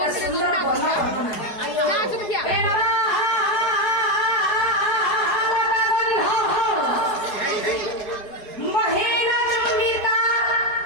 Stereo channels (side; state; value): right; late; 4.8 ms